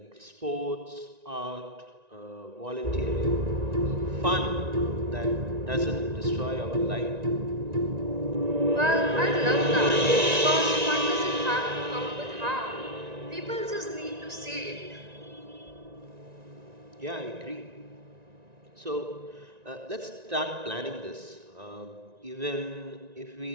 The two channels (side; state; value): left; late; 1.9 ms